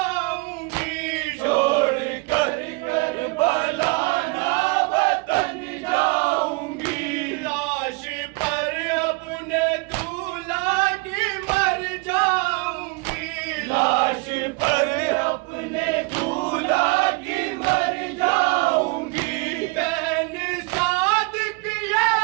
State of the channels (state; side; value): quieter; left; 28.5 dB